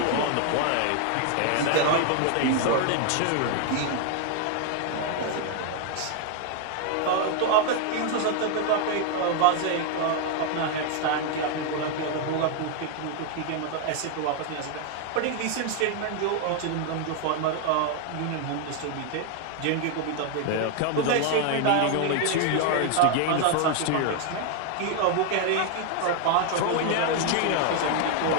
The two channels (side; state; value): both; different; correlation 0.00